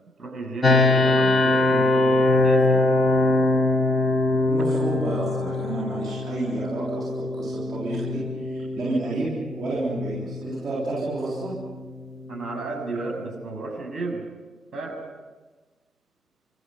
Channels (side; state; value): both; normal; correlation 0.73